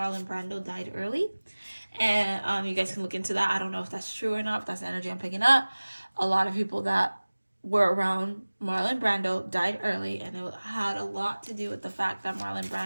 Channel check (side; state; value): both; inverted; correlation -1.00